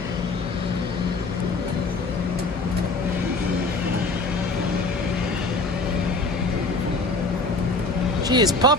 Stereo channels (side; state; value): right; quieter; 3.2 dB